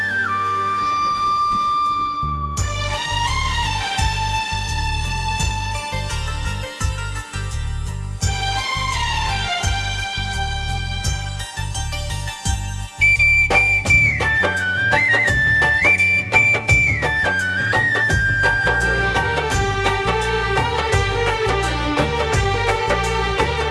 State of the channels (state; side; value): identical; both; correlation 1.00